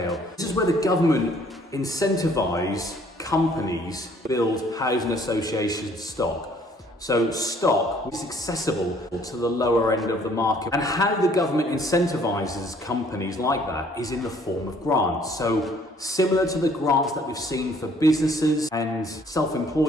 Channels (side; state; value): both; normal; correlation 0.60